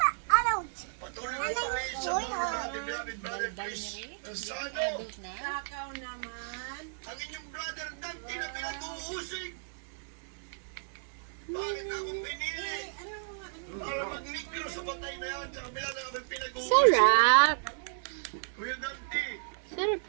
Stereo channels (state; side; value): silent; left; digital silence